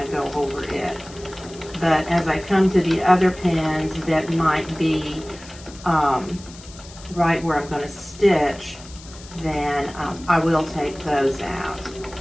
to go over it. But as I come to the other pins that might be right where I'm going to stitch, then I will take those out.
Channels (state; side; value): noise; left; hiss, 19 dB below the sound